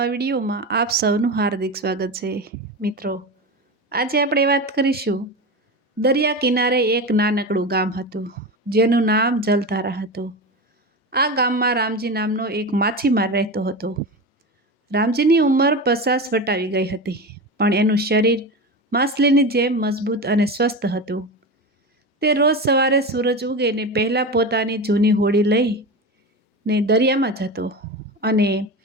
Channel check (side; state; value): both; normal; correlation 0.24